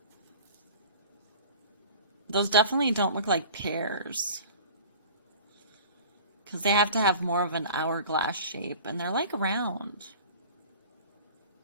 Those definitely don't look like pears, because they have to have more of an hourglass shape, and they're like round.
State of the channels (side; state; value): both; inverted; correlation -0.42